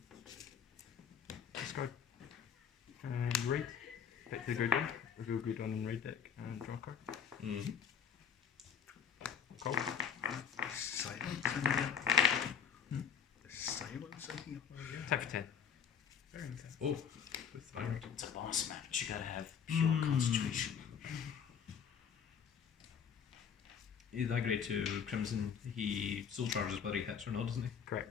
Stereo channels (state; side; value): quieter; right; 7.5 dB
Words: Discard. And raid. Pick the grade 1. Reveal grade 1 in raid deck and draw a card. Mm-hmm. Call. Silence in here. There's silence in here. Type for 10. Very intense. Oh, with Vanguard. It's a boss match. You gotta have pure concentration. That grade 2 Crimson, he soul charges whether he hits or not, doesn't he?